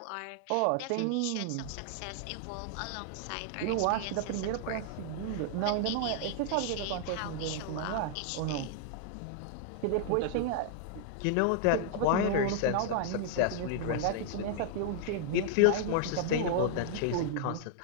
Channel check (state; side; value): different; both; correlation -0.01